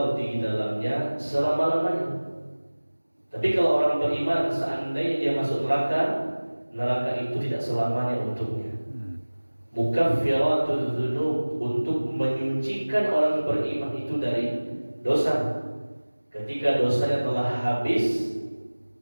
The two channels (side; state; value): both; inverted; correlation -1.00